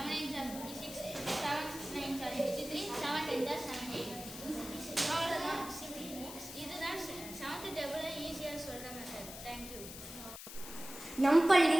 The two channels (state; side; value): noise; left; hiss, 11 dB below the sound